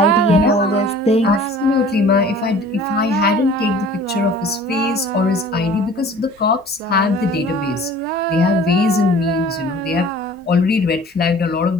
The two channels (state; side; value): normal; both; correlation 0.48